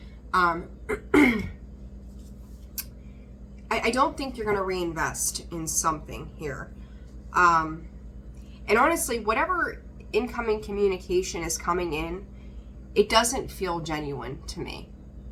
I don't think you're going to reinvest in something here. And honestly, whatever incoming communication is coming in, it doesn't feel genuine to me.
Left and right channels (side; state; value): both; identical; correlation 1.00